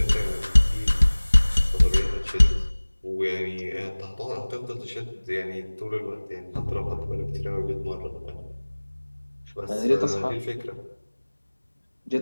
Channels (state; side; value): inverted; both; correlation -1.00